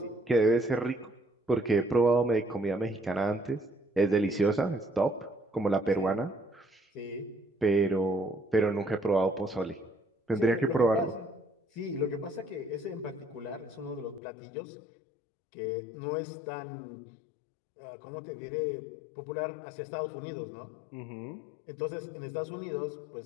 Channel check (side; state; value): right; drops out; at 14.2 s